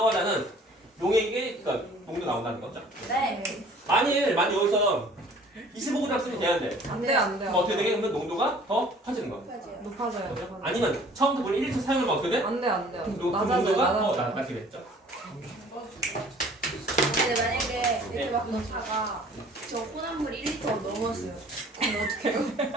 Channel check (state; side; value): normal; both; correlation 0.52